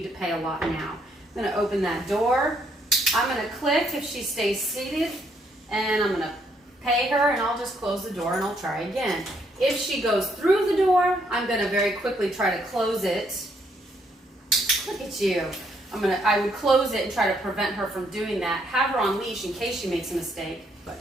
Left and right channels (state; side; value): normal; both; correlation 0.72